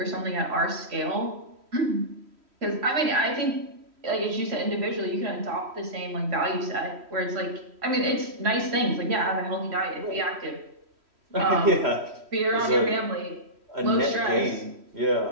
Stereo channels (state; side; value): late; left; 3.1 ms